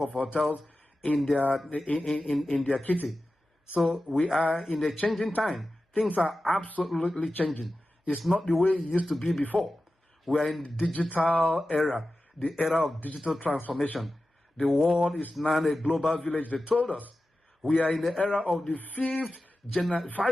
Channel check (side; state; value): both; normal; correlation 0.94